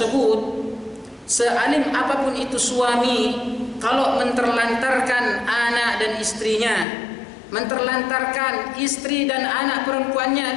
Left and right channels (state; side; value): drops out; right; at 6.9 s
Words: sealim apapun itu suami, kalau menterlantarkan anak dan istrinya, menterlantarkan istri dan anak